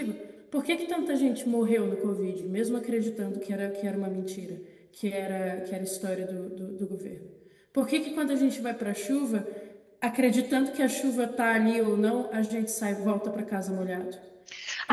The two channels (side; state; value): both; identical; correlation 1.00